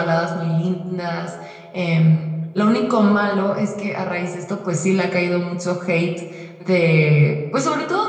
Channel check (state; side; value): identical; both; correlation 1.00